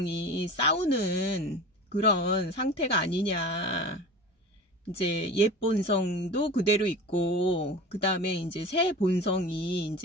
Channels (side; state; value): both; normal; correlation 0.35